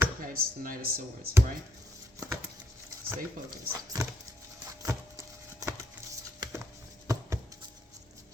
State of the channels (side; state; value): both; normal; correlation 0.76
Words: Okay, it's the Knight of Swords, right? Stay focused.